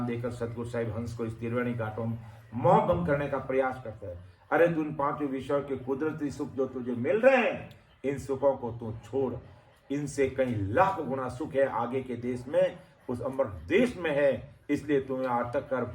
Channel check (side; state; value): both; identical; correlation 1.00